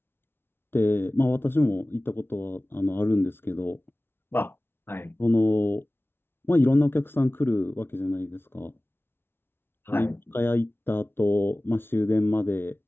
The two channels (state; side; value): late; right; 0.11 ms